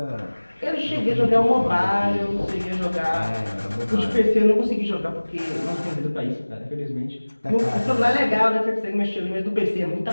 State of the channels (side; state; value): both; inverted; correlation -1.00